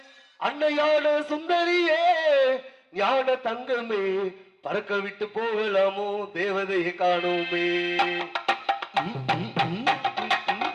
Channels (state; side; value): identical; both; correlation 1.00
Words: அன்னையான சுந்தரியே ஞான தங்கமே பறக்க விட்டு போகலாமோ தேவதையை காணோமே.